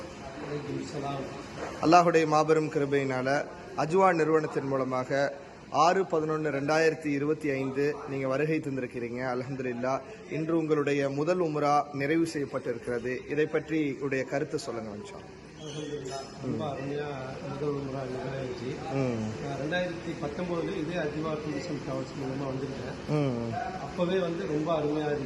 அல்லாஹுடைய மாபெரும் கிருபையினால அஜ்வா நிறுவனத்தின் மூலமாக 6/11/2025 நீங்கள் வருகை தந்திருக்கிறீங்க. அல்ஹம்துலில்லாஹ். இன்று உங்களுடைய முதல் உம்ரா நிறைவு செய்யப்பட்டிருக்கிறது. இதை பற்றி உடைய கருத்து சொல்லுங்க. ரொம்ப அருமையாக முதல் உம்ரா நிறைவேறிச்சு. 2019 இதே அஜ்வா டூரிசம் டிராவல்ஸ் மூலமாக வந்துருக்கேன். அப்போவே ரொம்ப அருமையாக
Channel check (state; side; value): identical; both; correlation 1.00